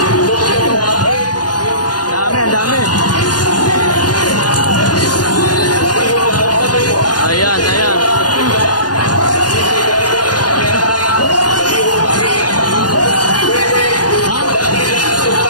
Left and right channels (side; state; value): right; late; 0.69 ms